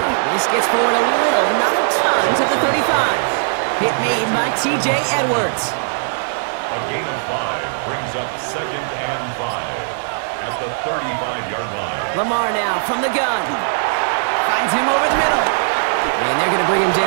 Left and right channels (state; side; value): silent; left; digital silence